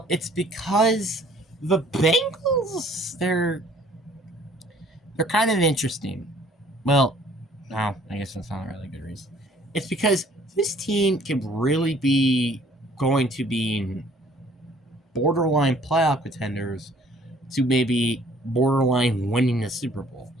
it's because the Bengals, they're kind of interesting. Well, no, I guess that's not a really good reason. It's because this team can really be going to be borderline playoff contenders to maybe borderline winning the Super Bowl.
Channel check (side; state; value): both; normal; correlation 0.57